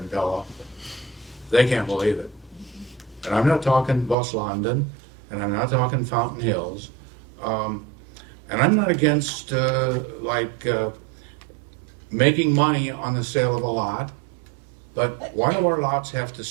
Pella, they can't believe it. And I'm not talking West London, and I'm not talking Fountain Hills. And I'm not against making money on the sale of a lot, but why do our lots have to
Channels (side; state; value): left; drops out; at 4.2 s